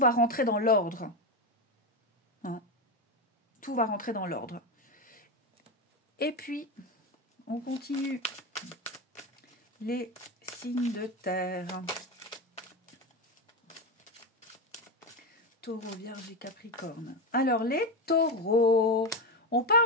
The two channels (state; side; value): normal; both; correlation 0.14